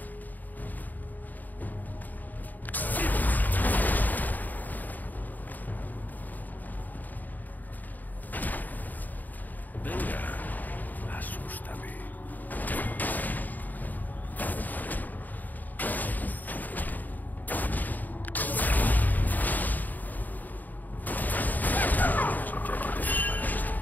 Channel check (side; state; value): right; late; 0.084 ms